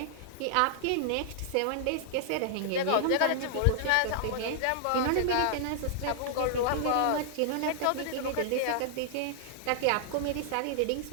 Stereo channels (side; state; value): both; different; correlation -0.01